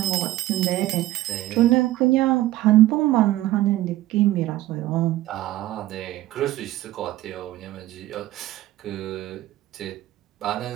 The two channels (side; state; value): left; quieter; 15.5 dB